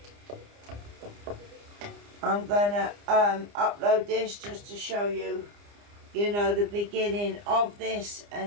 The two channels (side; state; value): left; late; 29 ms